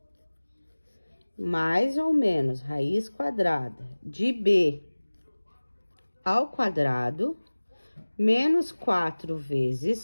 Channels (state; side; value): inverted; both; correlation -1.00